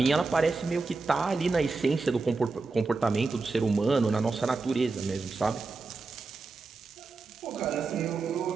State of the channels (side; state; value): left; quieter; 4.0 dB